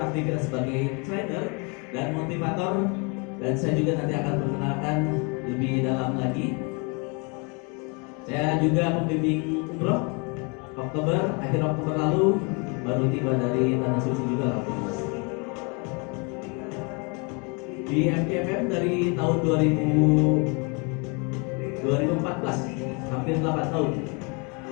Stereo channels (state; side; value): quieter; right; 32.8 dB